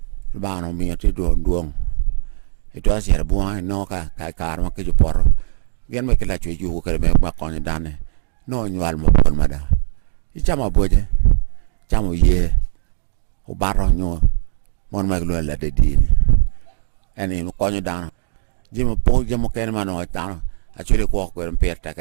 ba nó mi ti duong itu asia buang no ka kar ma ke jupor gen ma ke la chu ju ka me ma kon dane no nyual mo pon ma da i chama boje chamo ye o baro nyo mon ma lo la de di ani no kon dan jimo po jimo ken ma no ta a chu le ko per ta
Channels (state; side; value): silent; left; digital silence